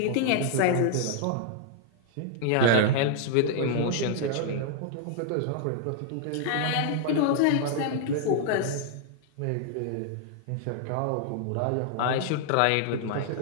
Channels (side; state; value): both; different; correlation 0.00